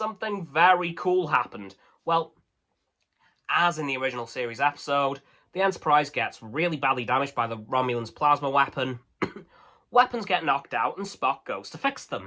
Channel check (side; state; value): both; identical; correlation 1.00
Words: very cool happened. Well, as in the original series episode, the Enterprise gets really badly damaged by the Romulans' plasma weapon. Weapons get knocked out and Spock goes to fix